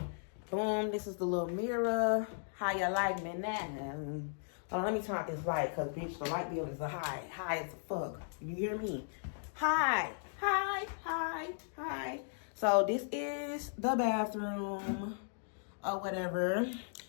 boom, this is the little mirror. How you like me now? Hold on, let me turn out this light because, bitch, the light bill is high. High as fuck. You hear me? High. So, this is the bathroom or whatever.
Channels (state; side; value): silent; right; digital silence